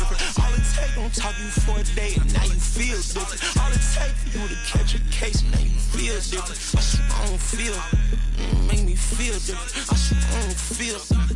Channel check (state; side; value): identical; both; correlation 1.00